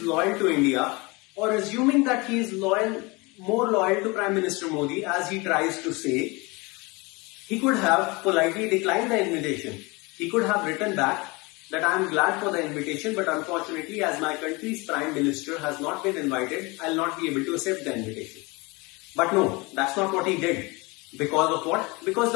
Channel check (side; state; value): right; quieter; 25.9 dB